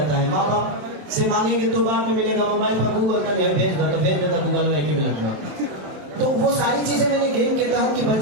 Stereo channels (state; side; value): late; left; 27 ms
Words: है। माँ बाप से मांगेंगे तो बाद में मिलेगा, मोबाइल पर गूगल का भेज देगा गूगल में एक ही मिनट में। तो वो सारी चीजें मैंने गेम के तहत कि